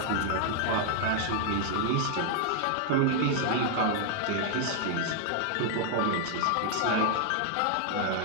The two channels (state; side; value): different; both; correlation 0.00